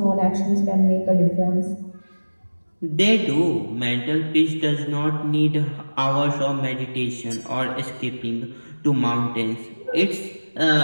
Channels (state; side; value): inverted; both; correlation -1.00